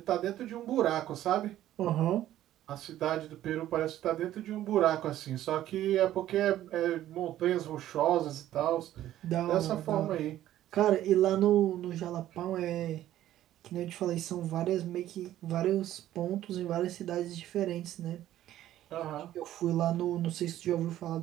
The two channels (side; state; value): left; quieter; 13.1 dB